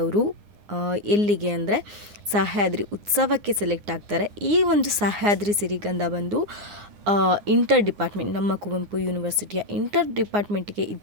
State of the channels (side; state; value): left; late; 9.7 ms